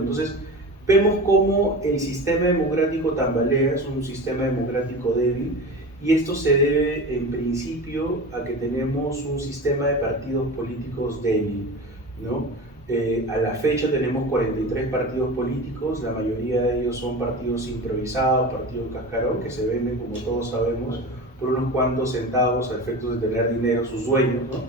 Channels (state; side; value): normal; both; correlation 0.30